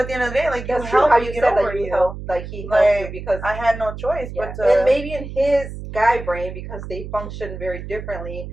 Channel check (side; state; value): right; noise; hum, 10 dB below the sound